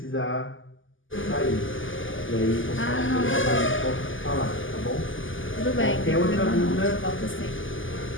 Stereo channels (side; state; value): right; late; 0.58 ms